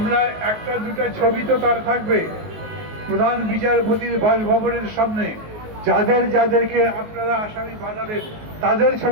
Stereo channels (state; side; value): late; left; 19 ms